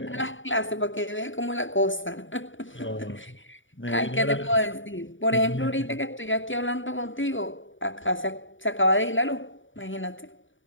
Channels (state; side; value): late; right; 0.56 ms